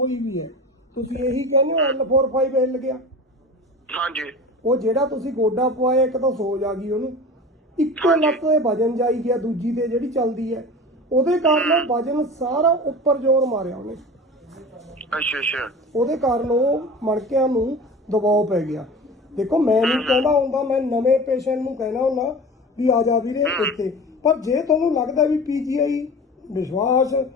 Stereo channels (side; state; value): both; normal; correlation 0.35